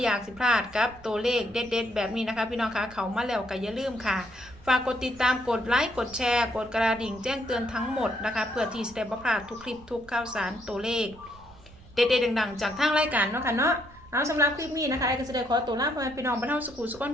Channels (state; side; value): noise; right; rumble, 22 dB below the sound